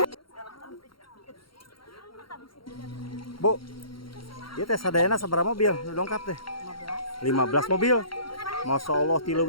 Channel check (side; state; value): right; late; 0.73 ms